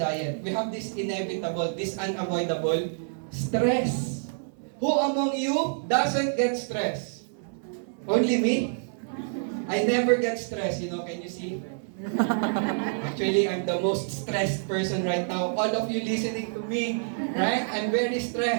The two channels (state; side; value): silent; left; 60 dB below the other